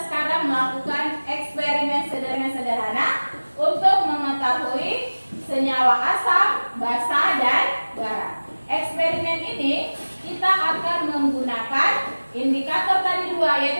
sekarang melakukan eksperimen sederhana untuk mengetahui senyawa asam, basa, dan garam. Eksperimen ini kita akan menggunakan indikator tadi dua,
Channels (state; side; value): inverted; both; correlation -1.00